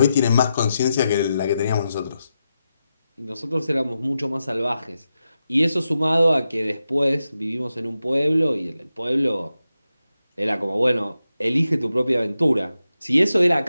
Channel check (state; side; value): inverted; both; correlation -0.89